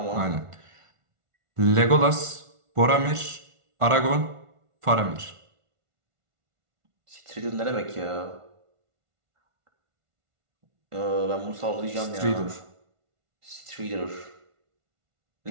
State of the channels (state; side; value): late; left; 1.5 ms